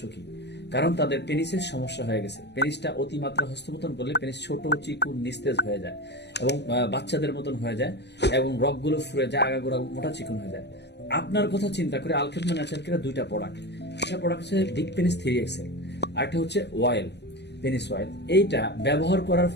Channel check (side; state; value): right; late; 0.50 ms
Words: কারণ তাদের পেনিসের সমস্যা হয়ে গেছে। পেনিসটা অতিমাত্রা হস্তমৈথুন করলে পেনিস ছোট, চিকুন, নিস্তেজ হয়ে যায় এবং বাচ্চাদের মতন হয়ে যায় এবং রগগুলো ফুরে যায়, আগাগোড়া মোটা চিকুন হয়ে যায়। আপনার কথা চিন্তা করে আলখেদমা ন্যাচারাল কেয়ার দুইটা প্রোডাক্ট, একটা প্রোডাক্ট হচ্ছে ডিক পেনিস 3XL, আরেকটা হচ্ছে অয়েল, পেনিস অয়েল। এইটা ব্যবহার করার